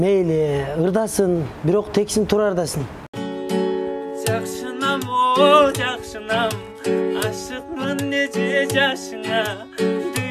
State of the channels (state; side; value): identical; both; correlation 1.00